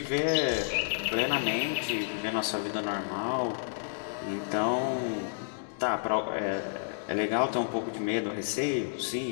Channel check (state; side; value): silent; right; digital silence